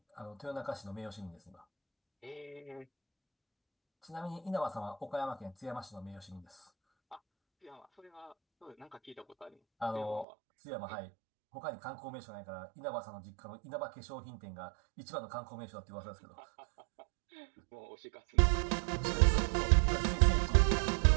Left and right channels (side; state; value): left; drops out; at 10.2 s